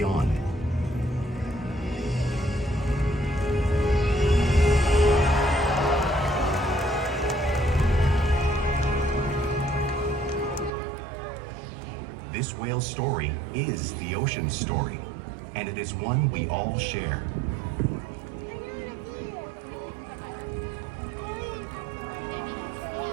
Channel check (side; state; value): left; drops out; at 10.7 s